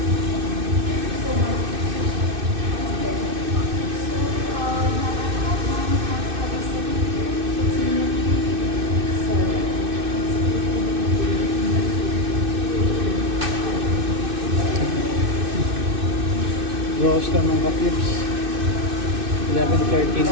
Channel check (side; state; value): left; late; 2.6 ms